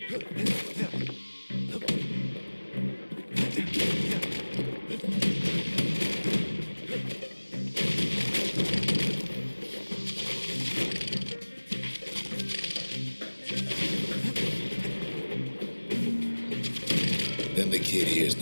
Then the kid hears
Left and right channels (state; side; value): inverted; both; correlation -1.00